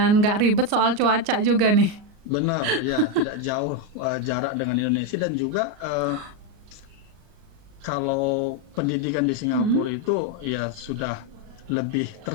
nggak ribet soal cuaca juga nih. Benar, ya, tidak jauh jarak dengan Indonesia, dan juga kalau pendidikan di Singapura itu ya sudah lebih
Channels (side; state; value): left; late; 38 ms